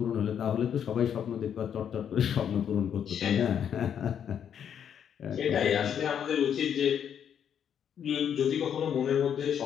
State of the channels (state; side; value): quieter; right; 8.6 dB